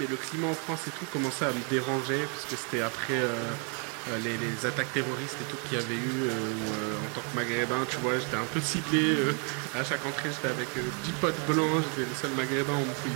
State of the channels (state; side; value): quieter; left; 37.5 dB